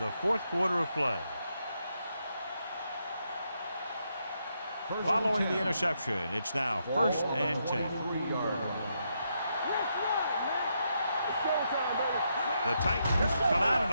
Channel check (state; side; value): inverted; both; correlation -0.80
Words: fourth quarter of play. Following the interception, it's now 1st and 10. The Titans come out in